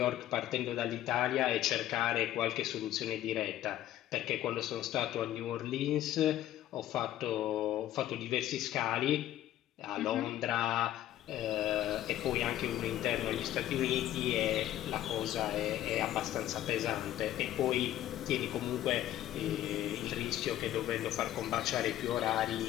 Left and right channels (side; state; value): right; quieter; 12.9 dB